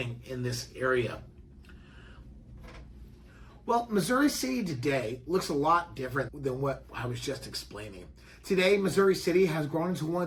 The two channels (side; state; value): both; identical; correlation 1.00